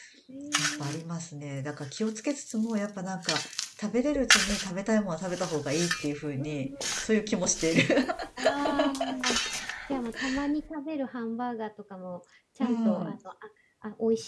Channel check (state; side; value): identical; both; correlation 1.00